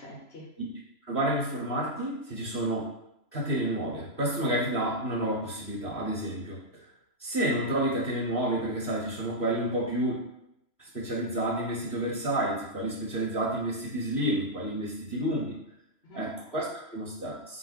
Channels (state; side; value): late; right; 3.0 ms